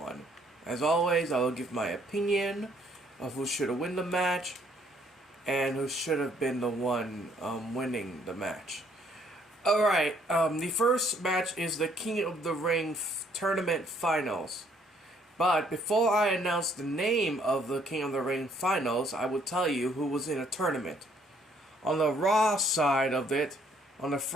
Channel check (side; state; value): both; normal; correlation 0.65